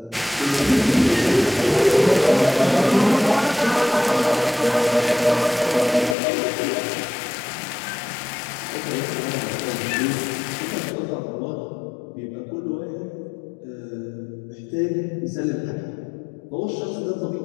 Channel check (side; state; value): right; drops out; at 6.2 s